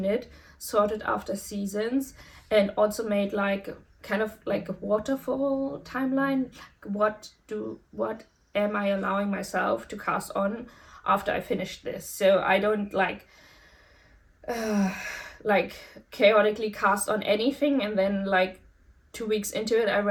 knit, sorted after seasons, and also made like kind of like a waterfall timeline. What am I allowing myself to cast on after I finish this? So I don't like chaotically cast on anything and then like 2 weeks into it I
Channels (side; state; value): both; identical; correlation 1.00